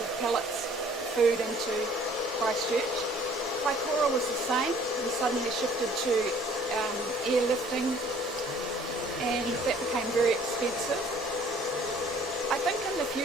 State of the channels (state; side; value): normal; both; correlation 0.55